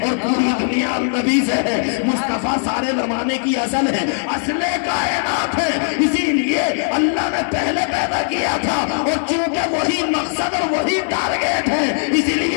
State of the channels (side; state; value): right; silent; 59 dB below the other